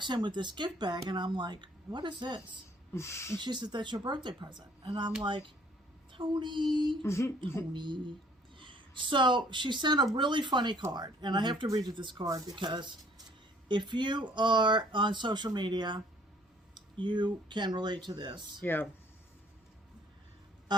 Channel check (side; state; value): both; normal; correlation 0.59